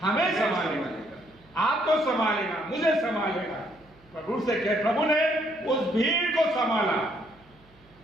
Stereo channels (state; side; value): noise; right; hum, 29 dB below the sound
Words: हमें संभालेगा, आपको संभालेगा, मुझे संभालेगा। प्रभु से कहे, प्रभु ने उस भीड़ को संभाला।